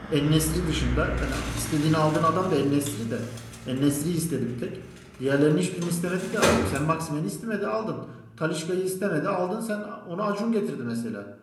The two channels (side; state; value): both; identical; correlation 1.00